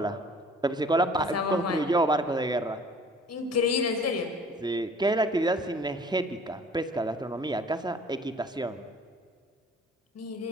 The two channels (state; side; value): normal; both; correlation 0.51